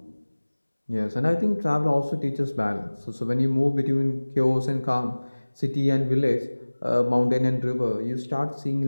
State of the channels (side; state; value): both; inverted; correlation -1.00